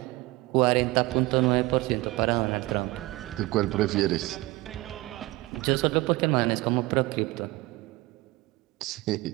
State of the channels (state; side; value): quieter; left; 20.6 dB